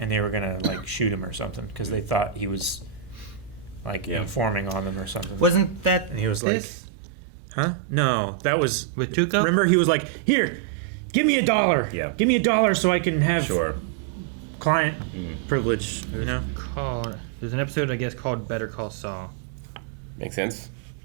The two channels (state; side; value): drops out; left; at 6.4 s